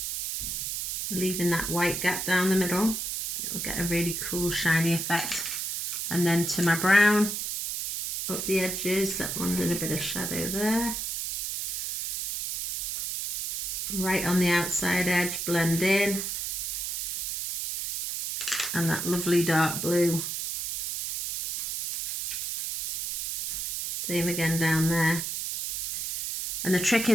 Leaving that white gap down the middle. It'll get a really cool shiny effect. And then to my brown, up the edges. That one's in a bit of shadow there. Right on the outside edge, blend in. And that lovely dark blue. Same again down there. And the trick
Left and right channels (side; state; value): right; noise; hiss, 3 dB below the sound